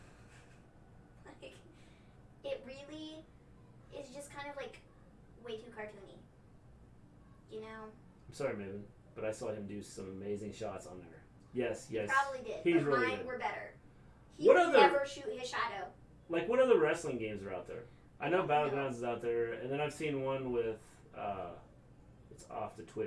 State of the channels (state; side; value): identical; both; correlation 1.00